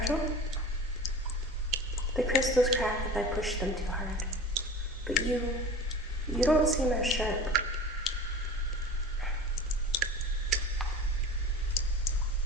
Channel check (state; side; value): normal; both; correlation 0.36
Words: The crystals crack if I push them too hard. But you don't seem as sharp.